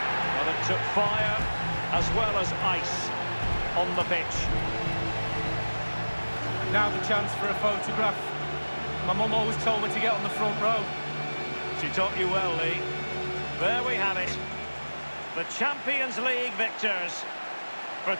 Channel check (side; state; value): both; inverted; correlation -1.00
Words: Well, it took fire as well as ice on the pitch. Now the chance for a photograph. My mum always told me to get on the front row. She taught you well, Lee. There we have it. The Champions League victors for